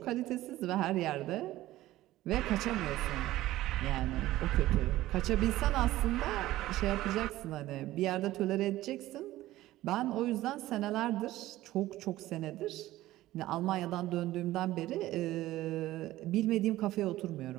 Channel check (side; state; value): left; quieter; 15.9 dB